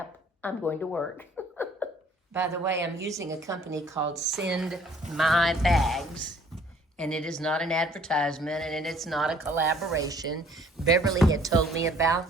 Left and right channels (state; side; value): normal; both; correlation 0.57